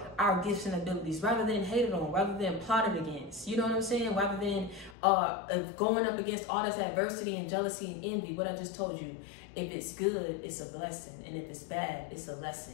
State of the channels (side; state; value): right; drops out; at 5.0 s